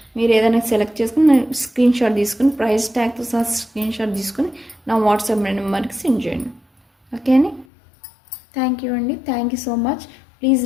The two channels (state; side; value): drops out; right; at 7.7 s